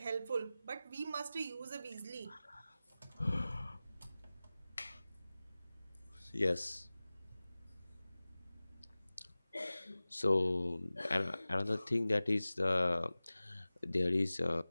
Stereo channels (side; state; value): both; inverted; correlation -0.97